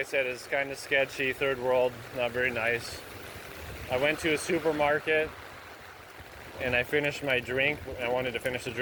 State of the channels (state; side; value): identical; both; correlation 1.00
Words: said, is kind of sketchy, third world, not very nice. I went to a supermarket and I finished my drink. I wanted to finish the